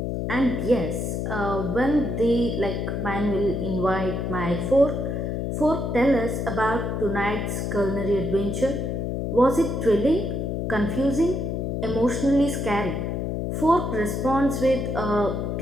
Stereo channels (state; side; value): noise; left; hum, 2 dB below the sound